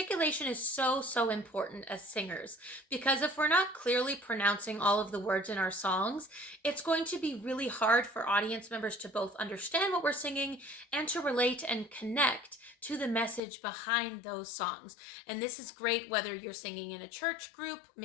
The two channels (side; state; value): right; drops out; at 13.4 s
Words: is so important as singers because if we're not clearly pronouncing all of the words in our songs, it's going to be really hard for audience members to both understand what we're singing and to relate and connect to the message behind those songs. And this is great whether you're singing in a church group,